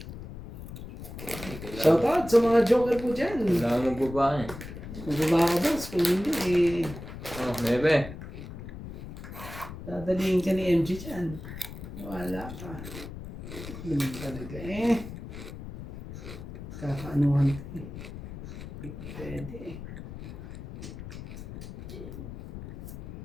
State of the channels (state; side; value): noise; left; rumble, 11 dB below the sound